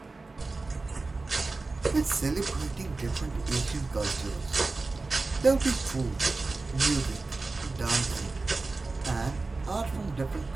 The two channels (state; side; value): quieter; left; 3.6 dB